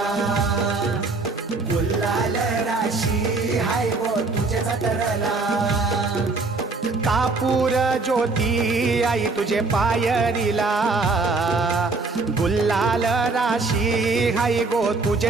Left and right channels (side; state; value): left; quieter; 3.7 dB